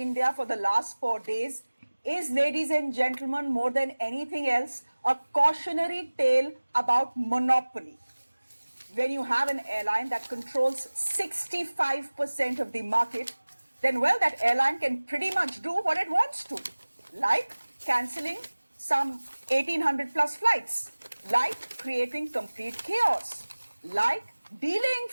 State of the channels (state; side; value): inverted; both; correlation -1.00